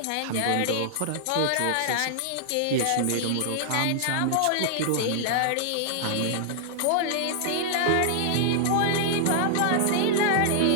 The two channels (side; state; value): both; different; correlation -0.01